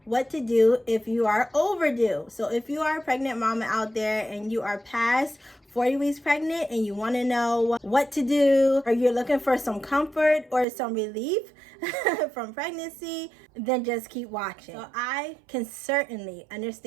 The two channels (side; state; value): left; drops out; at 10.7 s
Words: what to do if you are overdue. So if you are a pregnant mama out there and you are past 40 weeks pregnant and you want to know what to do, or you're looking for some comfort or some relief from pregnancy, then just keep watching. So I can certainly